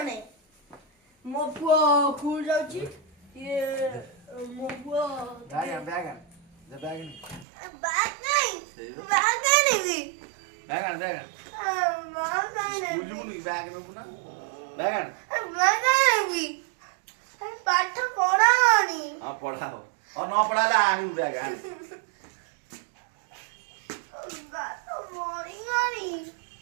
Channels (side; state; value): left; drops out; at 7.5 s